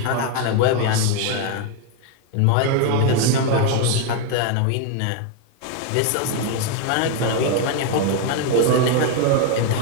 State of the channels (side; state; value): both; different; correlation 0.01